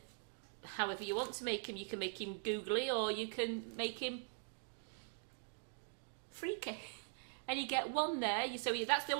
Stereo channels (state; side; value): silent; left; digital silence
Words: however you want to make him. You can make him googly, or you can make him freaky. And you get 1 there, that's the